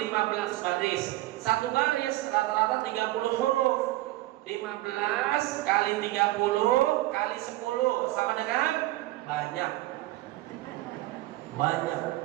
baris. Satu baris rata-rata 30 huruf. 15 kali 30 kali 10 sama dengan banyak.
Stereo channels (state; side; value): quieter; left; 17.8 dB